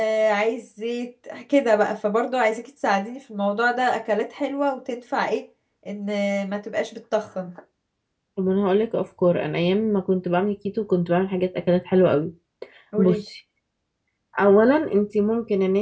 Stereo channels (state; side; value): identical; both; correlation 1.00